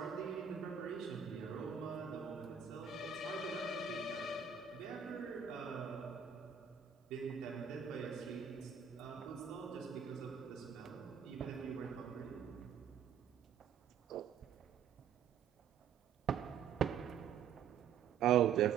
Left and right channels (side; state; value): left; quieter; 7.5 dB